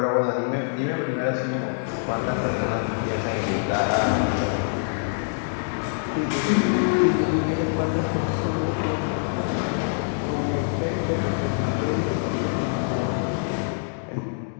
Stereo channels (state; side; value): silent; right; digital silence